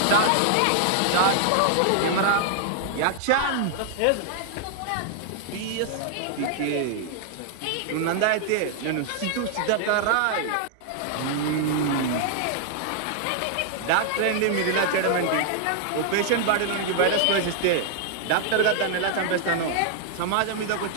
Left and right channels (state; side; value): different; both; correlation 0.00